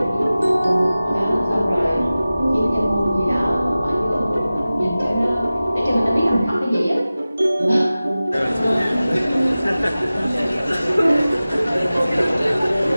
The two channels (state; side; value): inverted; both; correlation -0.96